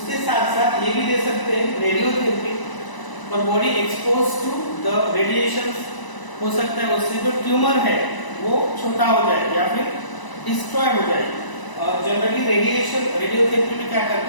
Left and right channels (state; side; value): late; right; 1.0 ms